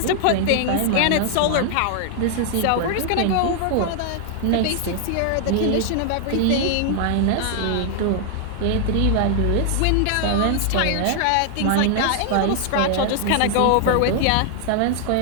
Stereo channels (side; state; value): both; different; correlation 0.00